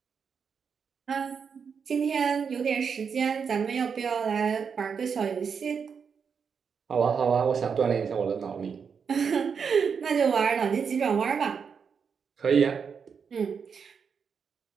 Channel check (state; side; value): quieter; left; 6.3 dB